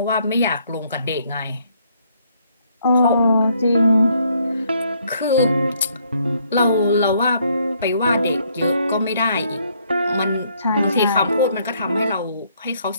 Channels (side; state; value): both; inverted; correlation -0.69